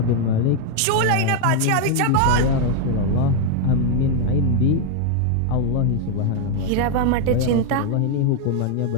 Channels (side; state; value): both; different; correlation 0.01